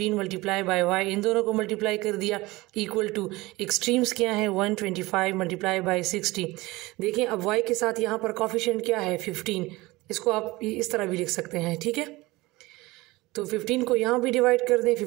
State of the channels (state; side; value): quieter; left; 20.9 dB